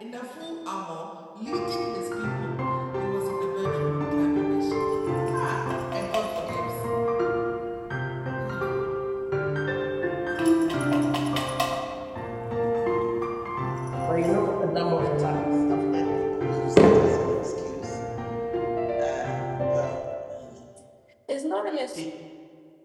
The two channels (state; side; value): identical; both; correlation 1.00